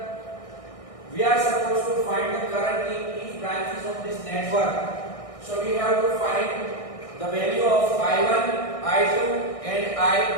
We are supposed to find the current in each branches of this network. So we have to find the value of I1, I2 and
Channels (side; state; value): right; late; 1.6 ms